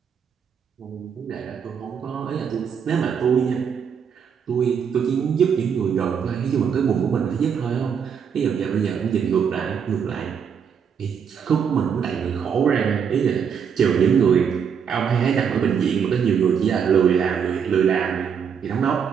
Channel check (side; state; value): left; quieter; 7.2 dB